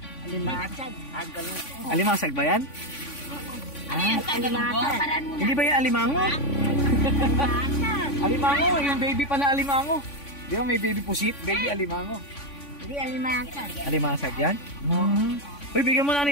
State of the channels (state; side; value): late; right; 3.5 ms